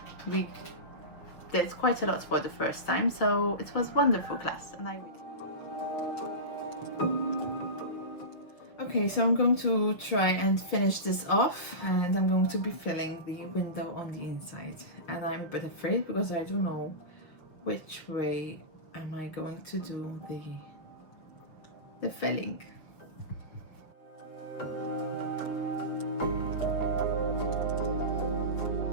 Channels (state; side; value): late; right; 6.7 ms